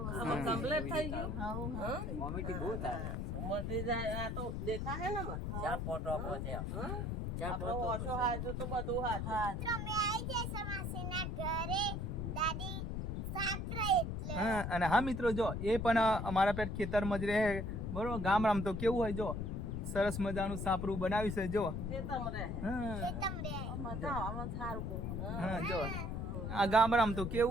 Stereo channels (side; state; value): left; noise; rumble, 3 dB below the sound